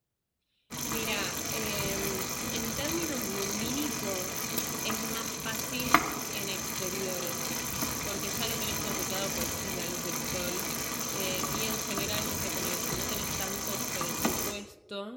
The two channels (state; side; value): identical; both; correlation 1.00